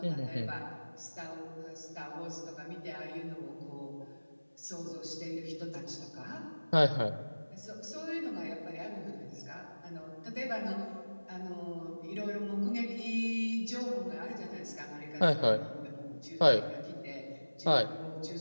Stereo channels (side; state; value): both; inverted; correlation -1.00